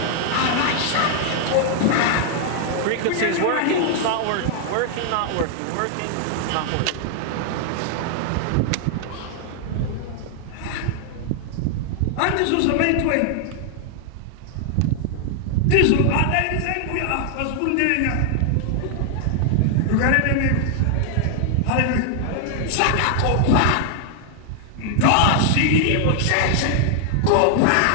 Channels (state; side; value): different; both; correlation 0.00